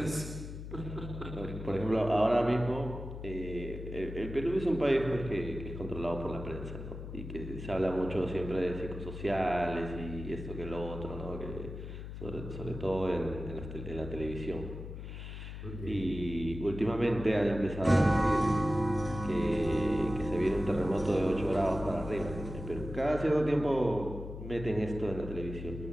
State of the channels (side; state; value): left; noise; hum, 9 dB below the sound